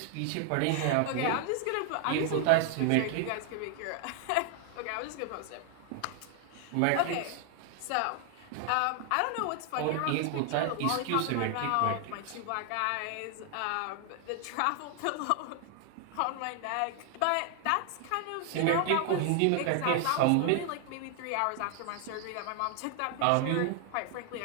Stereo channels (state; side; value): different; both; correlation 0.00